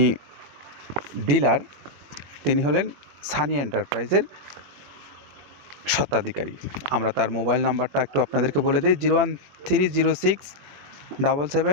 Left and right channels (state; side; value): late; left; 21 ms